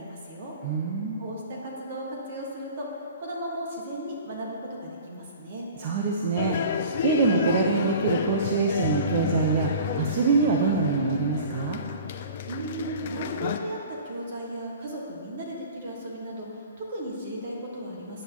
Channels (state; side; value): inverted; both; correlation -0.41